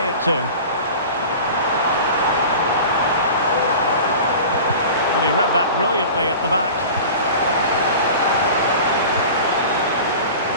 it to? And he read that brilliantly at the back.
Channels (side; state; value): both; inverted; correlation -0.36